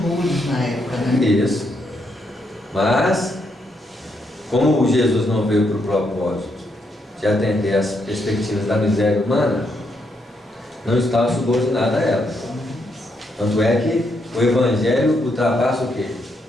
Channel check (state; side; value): normal; both; correlation 0.78